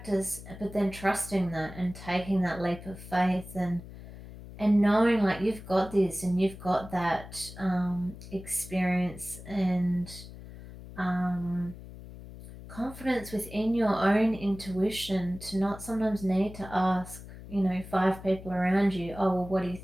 but then trusting that and taking that leap of faith, and knowing like you've got this and you've got that experience and um, confidence within your own intuition, to not sometimes need to ask, five people around you, oh, well, what do you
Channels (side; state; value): left; noise; hum, 15 dB below the sound